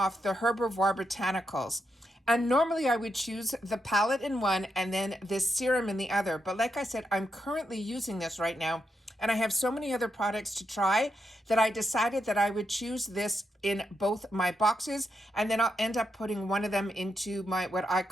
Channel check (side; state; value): both; normal; correlation 0.83